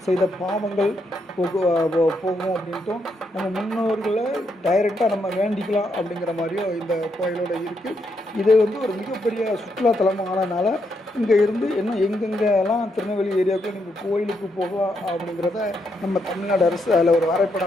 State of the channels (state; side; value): normal; both; correlation 0.79